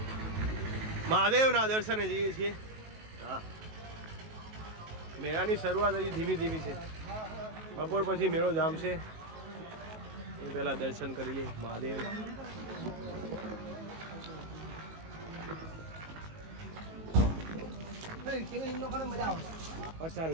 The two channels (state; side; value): late; left; 19 ms